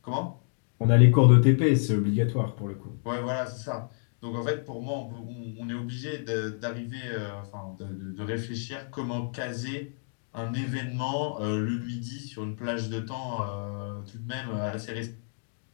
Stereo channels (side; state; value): right; silent; digital silence